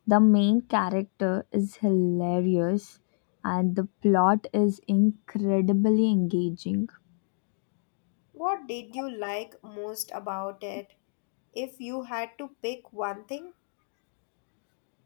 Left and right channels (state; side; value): silent; right; digital silence